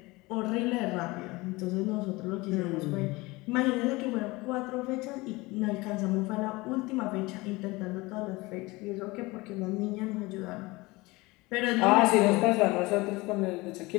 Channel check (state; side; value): quieter; right; 22.5 dB